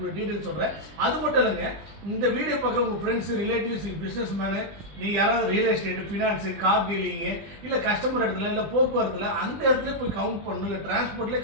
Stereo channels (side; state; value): left; late; 20 ms